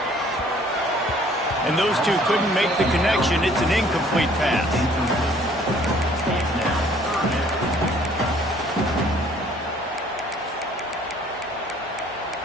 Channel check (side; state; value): both; normal; correlation 0.58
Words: And those two couldn't make the connection. It's an incomplete pass.